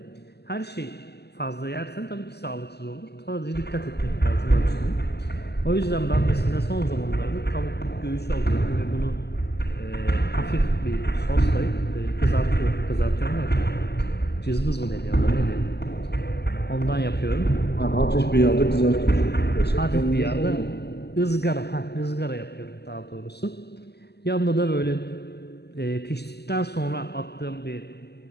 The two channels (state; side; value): late; right; 0.48 ms